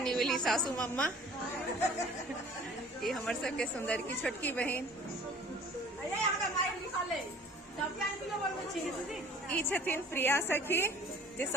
सासू मम्मा ये हमर सबके सुंदर की छोटकी बहन ई छथिन प्रिया सखी जे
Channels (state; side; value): normal; both; correlation 0.50